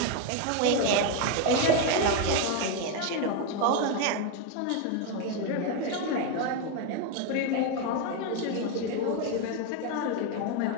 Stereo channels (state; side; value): different; both; correlation 0.02